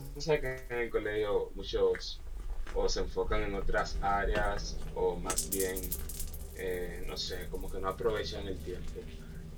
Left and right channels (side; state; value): both; identical; correlation 1.00